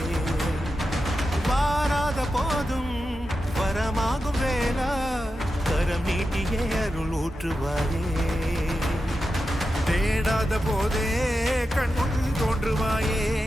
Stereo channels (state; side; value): normal; both; correlation 0.90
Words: வாராத போதும் வரமாகும் வேளா கரம் நீட்டியே அருள் ஊற்றுவாயே தேடாத போதே கண்முன் தோன்றுவாயே